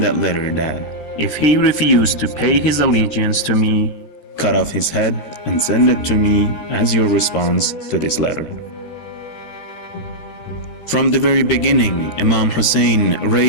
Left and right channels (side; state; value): right; late; 13 ms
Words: that letter that, if he refused to pay his allegiance to me, cut off his head and send it to me as your response to this letter. From the very beginning, Imam Hussein